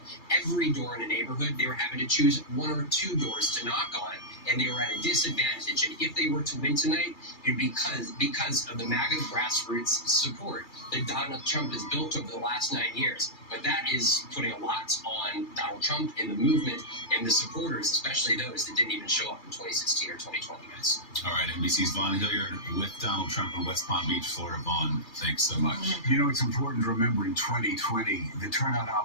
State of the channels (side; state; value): right; late; 3.3 ms